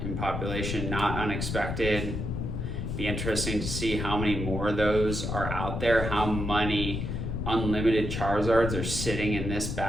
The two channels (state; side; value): noise; left; rumble, 3 dB below the sound